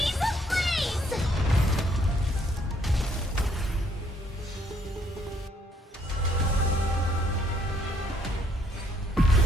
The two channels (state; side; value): normal; both; correlation 0.68